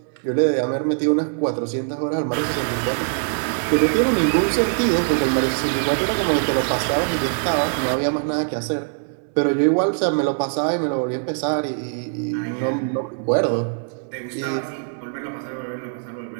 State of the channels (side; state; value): left; silent; 60 dB below the other